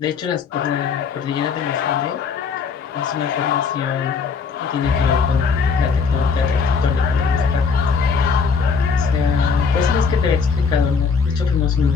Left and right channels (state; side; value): quieter; right; 5.5 dB